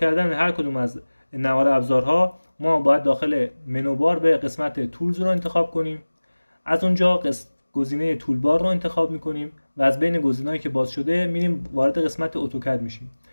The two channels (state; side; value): inverted; both; correlation -1.00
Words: هر کدوم از نوار ابزارها ما باید داخل منو بار به قسمت تولز رو انتخاب کنیم. از اونجا گزینه تولبار رو انتخاب میکنیم و از بین گزینه‌هایی که باز شده میریم وارد قسمت اتوکد میشیم.